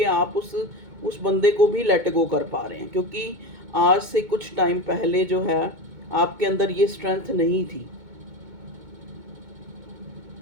आप उस बंदे को भी लेट गो कर पा रहे हैं, क्योंकि आज से कुछ टाइम पहले जो है आपके अंदर ये स्ट्रेंथ नहीं थी।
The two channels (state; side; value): late; left; 2.2 ms